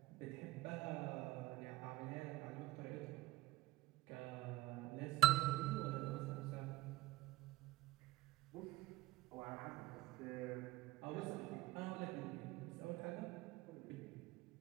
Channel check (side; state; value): left; quieter; 18.0 dB